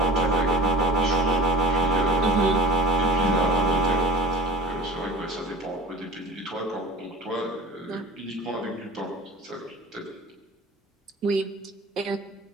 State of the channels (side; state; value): both; normal; correlation 0.41